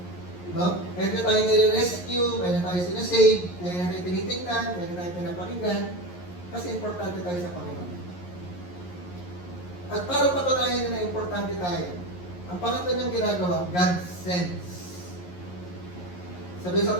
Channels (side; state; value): right; late; 11 ms